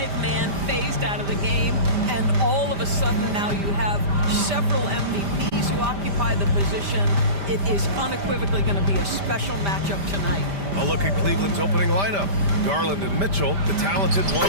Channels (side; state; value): left; late; 5.0 ms